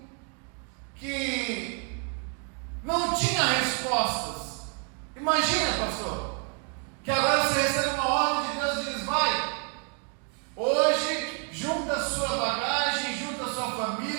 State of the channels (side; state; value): left; quieter; 38.9 dB